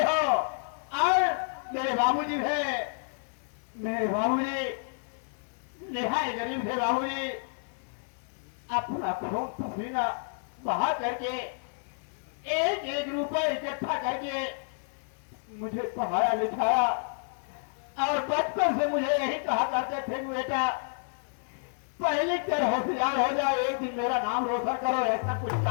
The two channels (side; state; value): right; silent; digital silence